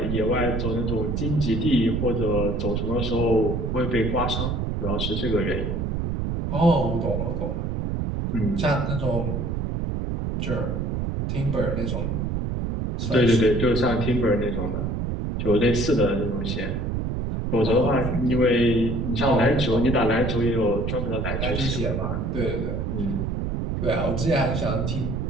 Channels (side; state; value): right; noise; rumble, 1 dB below the sound